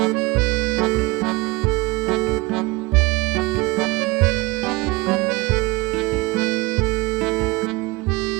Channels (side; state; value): left; quieter; 23.7 dB